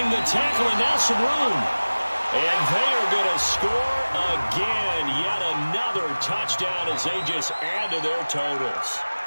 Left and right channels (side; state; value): both; inverted; correlation -1.00